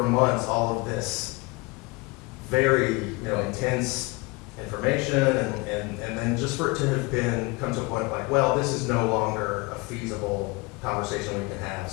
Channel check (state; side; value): quieter; right; 25.6 dB